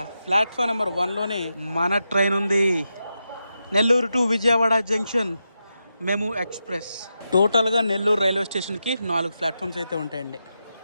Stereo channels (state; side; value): inverted; both; correlation -0.88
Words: ప్లాట్ఫామ్ నెంబర్ 1లోనే మన ట్రైన్ ఉంది. Nellore to Vijayawada junction మెము express. టోటల్గా నెల్లూరు రైల్వే స్టేషన్కి 4 ప్లాట్ఫామ్స్ అయితే ఉంటాయండి.